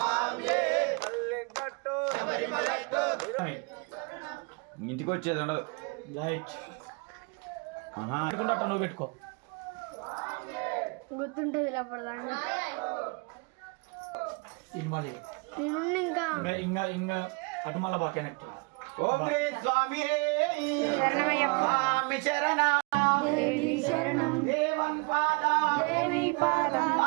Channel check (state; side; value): quieter; left; 30.7 dB